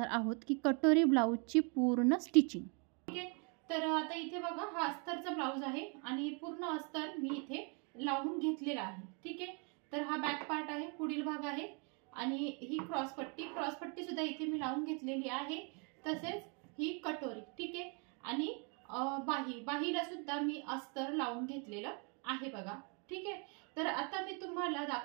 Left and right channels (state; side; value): quieter; left; 35.9 dB